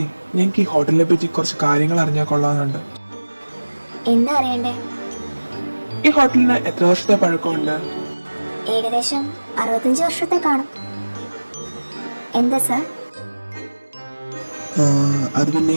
ഞങ്ങൾക്ക് ഈ ഹോട്ടലിനെ പറ്റി കുറച്ച് കാര്യങ്ങൾ അറിഞ്ഞാൽ കൊള്ളാമെന്നുണ്ട്. എന്താ അറിയണ്ടേ? ഈ ഹോട്ടലിന് എത്ര വർഷത്തെ പഴക്കമുണ്ട്? ഏകദേശം 65 വർഷത്തെ കാണും. എന്താ സാർ? അത് പിന്നെ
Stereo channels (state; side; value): inverted; both; correlation -1.00